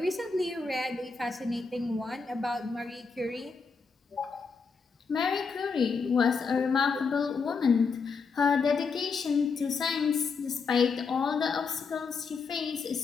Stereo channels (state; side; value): quieter; right; 5.0 dB